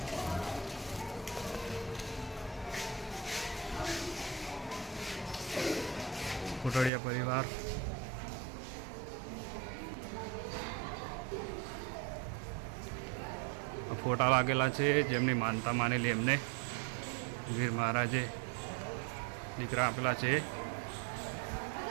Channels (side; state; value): left; drops out; at 6.9 s